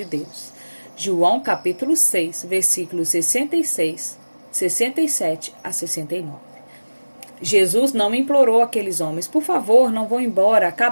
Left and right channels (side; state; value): both; inverted; correlation -1.00